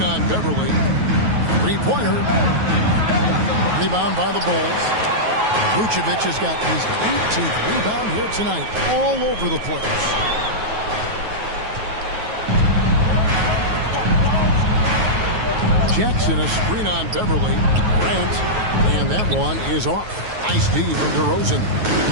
on Beverly. Three-pointer. Rebound by the Bulls. Vucevic has got his 18th rebound here tonight. All over the place. Jackson a screen on Beverly. Grant. And that one is off. Nice D from DeRozan.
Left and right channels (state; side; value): late; left; 9.3 ms